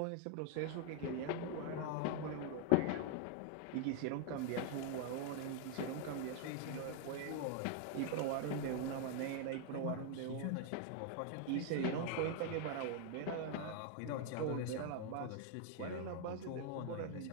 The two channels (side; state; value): both; different; correlation 0.00